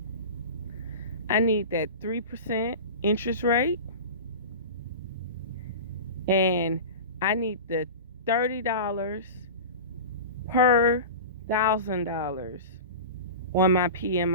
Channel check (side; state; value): both; inverted; correlation -0.30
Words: I need that 3% interest rate, and I need the $30 per $1,000 on my